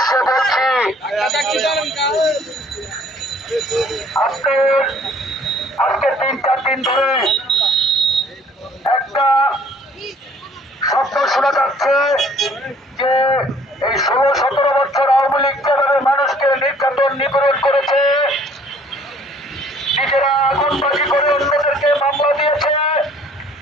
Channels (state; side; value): normal; both; correlation 0.57